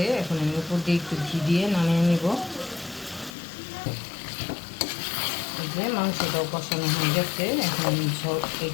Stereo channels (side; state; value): right; drops out; at 3.4 s